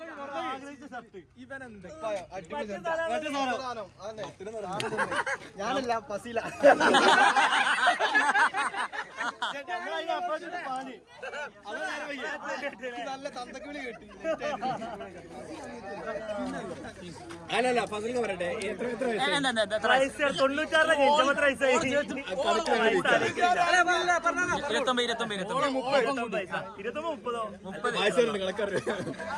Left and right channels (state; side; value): identical; both; correlation 1.00